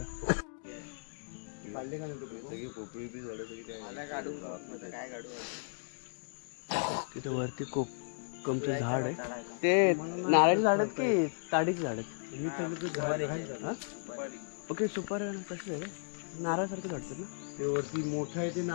तिथे वरती कोकमचं झाड आहे. ते नारळाची झाड आहेत की ताडीची झाड आहेत? ओके सुपर कसं आहे नारळासारखं वाटतं ना ते वरती मोठं आहे ते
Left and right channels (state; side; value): silent; right; digital silence